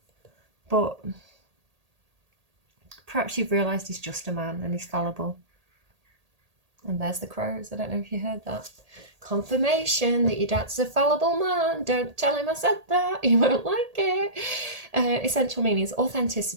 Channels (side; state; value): left; late; 1.8 ms